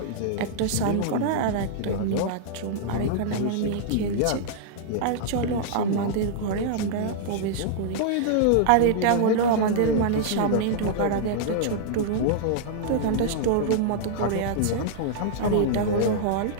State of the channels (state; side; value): different; both; correlation -0.01